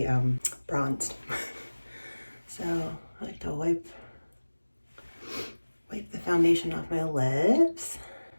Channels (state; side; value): inverted; both; correlation -1.00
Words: bronzed. So I like to wipe the foundation off my lips.